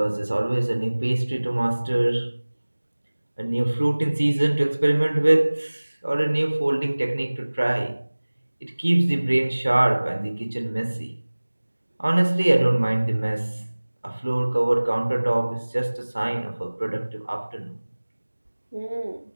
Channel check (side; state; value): both; inverted; correlation -1.00